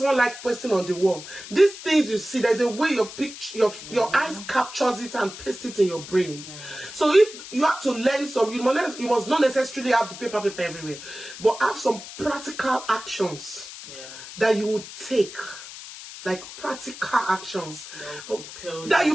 one like posting on the wall. These things you see, there's a way your eyes captures it and paste it in your brains. So if you have to learn some, you must not necessarily have the paper everywhere, but have some practical actions that you would take. Like practical actions that will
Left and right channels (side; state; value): left; noise; hiss, 13 dB below the sound